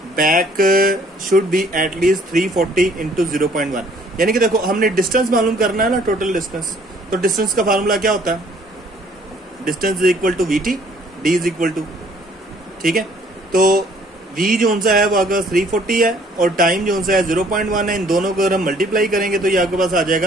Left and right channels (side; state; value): both; normal; correlation 0.59